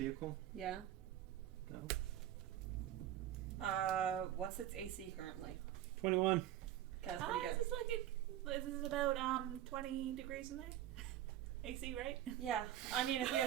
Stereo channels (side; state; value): left; quieter; 12.4 dB